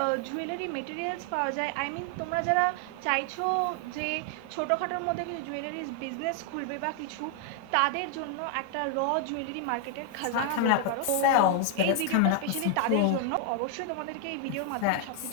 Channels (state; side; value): different; both; correlation 0.00